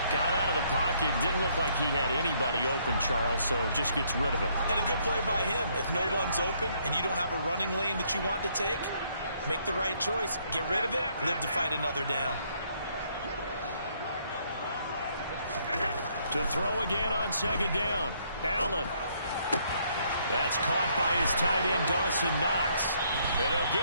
Got out of the pocket. Didn't look like he had anybody open, Charles, so just gets rid of it. And a good play by him. If no one's open and you don't have a running lane that you want to take, make the right choice. Get rid of it. Live to fight another down. To throw again on 2nd down. Allen. That's caught by his tight end, Dawson Knox. And he'll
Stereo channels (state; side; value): inverted; both; correlation -0.69